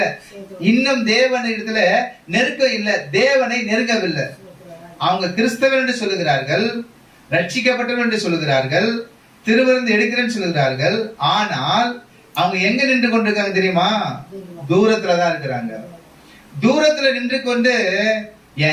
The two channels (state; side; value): identical; both; correlation 1.00